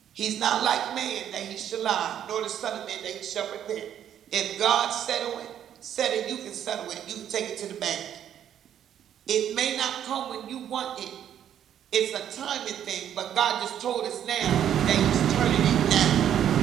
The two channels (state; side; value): quieter; left; 10.0 dB